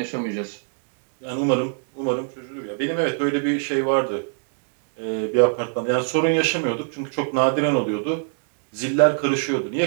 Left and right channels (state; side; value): silent; left; 60 dB below the other